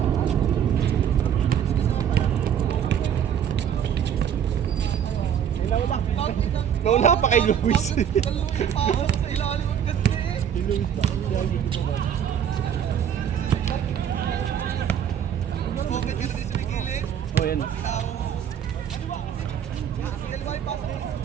Wala pa kay Luis. Oh, yan.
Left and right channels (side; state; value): left; quieter; 8.9 dB